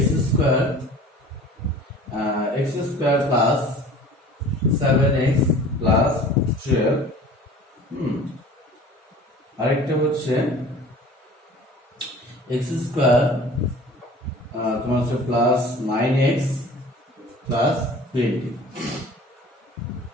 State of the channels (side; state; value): both; normal; correlation 0.45